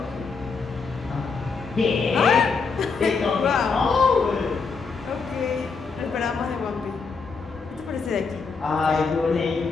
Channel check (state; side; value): quieter; right; 4.9 dB